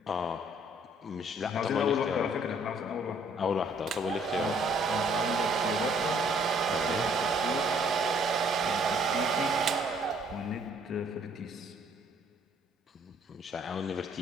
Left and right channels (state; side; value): normal; both; correlation 0.62